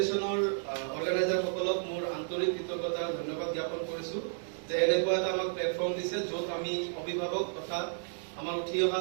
অৰ্গেনাইজাৰসকলক মোৰ আন্তৰিক কৃতজ্ঞতা ধন্যবাদ জ্ঞাপন কৰিছো যে এনেকুৱা এটা আমাক প্লেটফৰ্ম দিছে য'ত আমি অভিভাৱক তথা আমাৰ উঠি অহা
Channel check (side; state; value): left; silent; digital silence